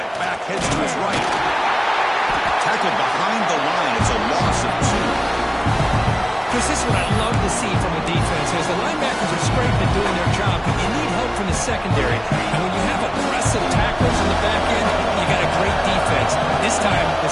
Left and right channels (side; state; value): both; identical; correlation 1.00